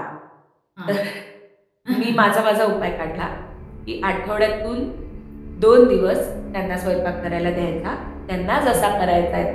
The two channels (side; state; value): both; identical; correlation 1.00